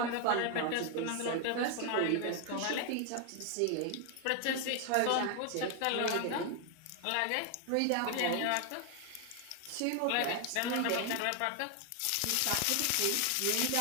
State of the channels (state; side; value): different; both; correlation 0.01